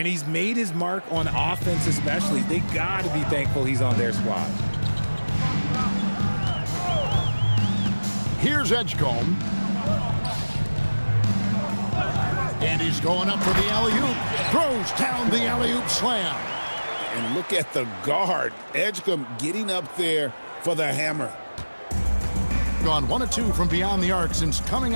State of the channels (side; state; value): both; inverted; correlation -1.00